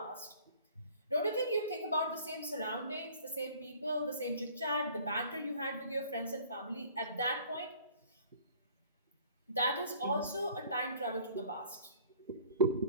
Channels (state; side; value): inverted; both; correlation -0.52